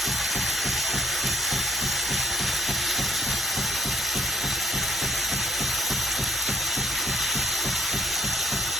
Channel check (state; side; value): normal; both; correlation 0.65